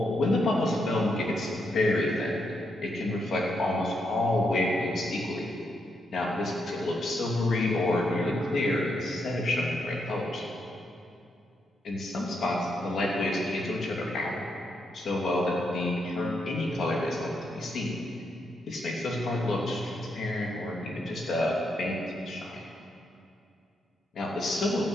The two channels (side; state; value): both; normal; correlation 0.80